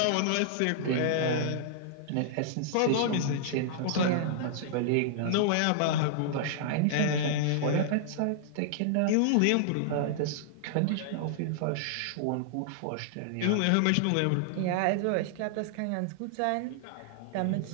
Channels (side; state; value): both; different; correlation -0.01